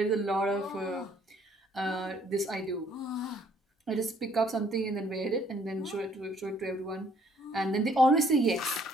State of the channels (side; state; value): both; normal; correlation 0.63